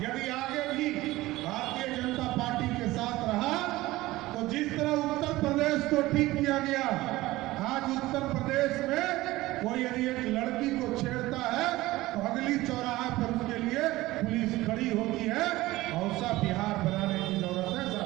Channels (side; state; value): left; quieter; 18.2 dB